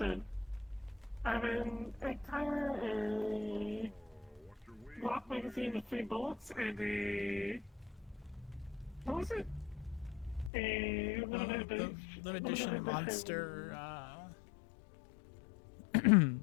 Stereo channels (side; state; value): right; drops out; at 10.5 s